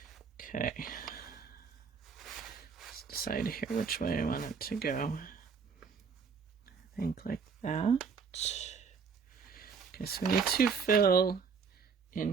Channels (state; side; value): quieter; left; 5.7 dB